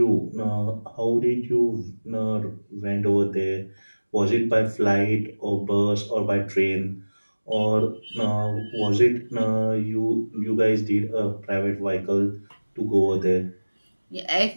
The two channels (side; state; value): both; inverted; correlation -1.00